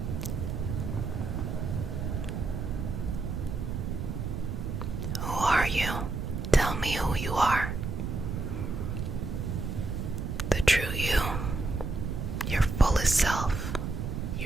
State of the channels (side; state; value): right; noise; rumble, 3 dB below the sound